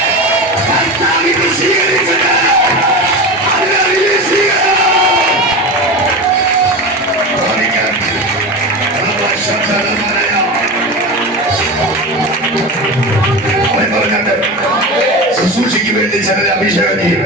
സ്വീകരിച്ചത്. ശുശ്രൂഷയ്ക്ക് വേണ്ടി ചിലരെ അഭിഷേകം ചെയ്യും.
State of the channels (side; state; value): both; normal; correlation 0.25